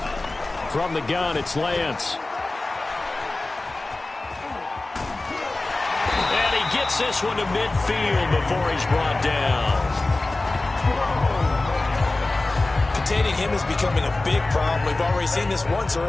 From the gun, it's Lance. And he gets this one to midfield before he's brought down. Containing him is becoming a big problem. We've already seen this once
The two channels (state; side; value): quieter; right; 3.0 dB